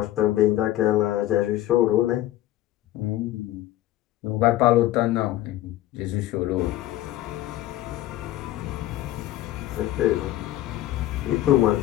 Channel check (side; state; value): right; quieter; 14.7 dB